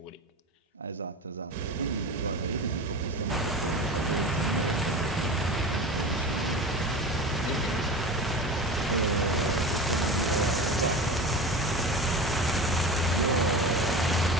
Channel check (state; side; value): normal; both; correlation 0.31